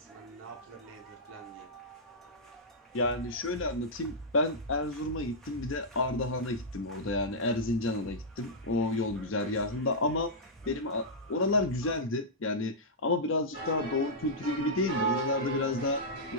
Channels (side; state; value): both; normal; correlation -0.10